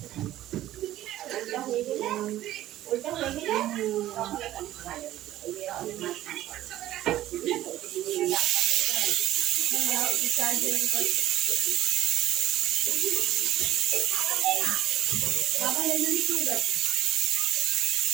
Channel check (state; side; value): quieter; left; 13.9 dB